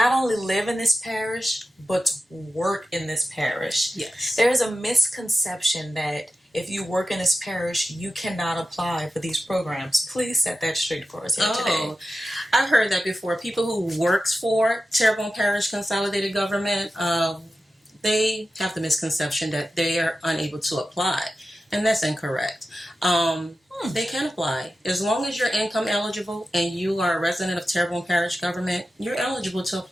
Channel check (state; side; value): normal; both; correlation 0.92